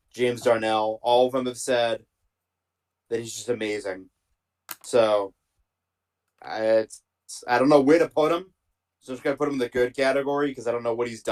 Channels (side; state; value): both; identical; correlation 1.00